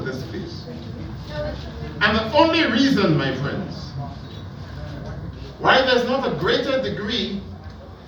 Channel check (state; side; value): identical; both; correlation 1.00